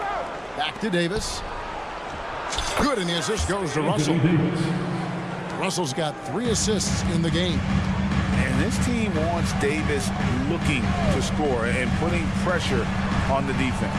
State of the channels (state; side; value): identical; both; correlation 1.00